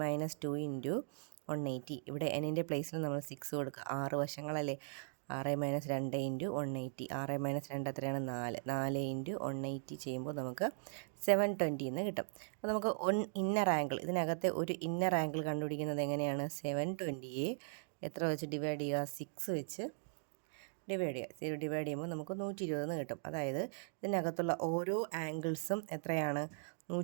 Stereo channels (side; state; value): left; silent; digital silence